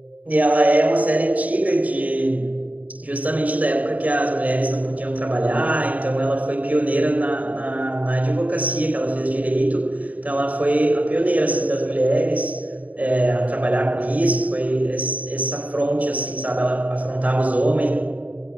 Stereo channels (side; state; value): left; late; 0.072 ms